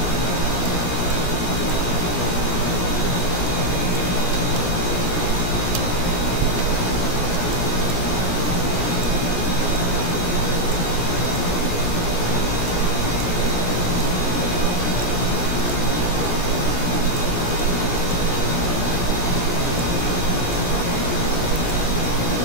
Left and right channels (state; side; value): late; right; 17 ms